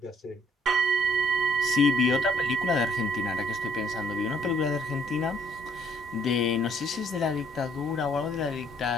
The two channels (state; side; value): normal; both; correlation 0.64